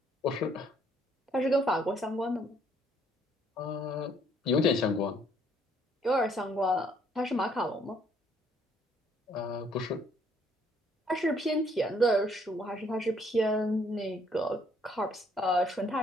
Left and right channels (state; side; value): normal; both; correlation 0.66